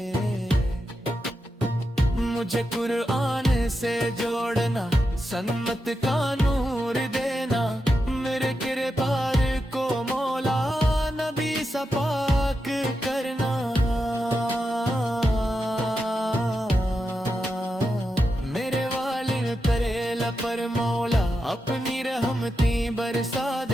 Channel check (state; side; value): normal; both; correlation 0.87